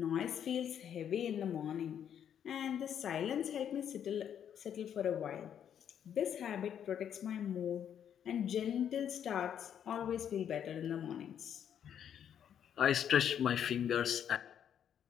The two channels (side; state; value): right; quieter; 9.0 dB